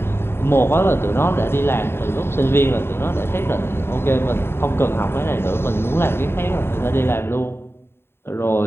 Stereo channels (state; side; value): late; right; 0.11 ms